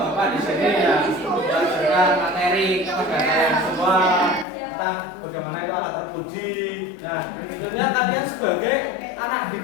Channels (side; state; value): right; drops out; at 4.5 s